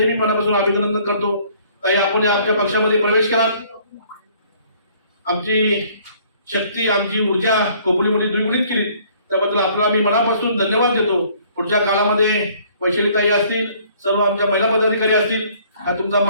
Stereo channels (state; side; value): inverted; both; correlation -0.59